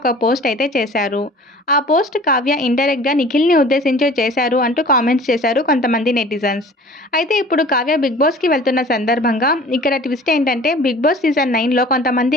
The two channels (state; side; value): normal; both; correlation 0.46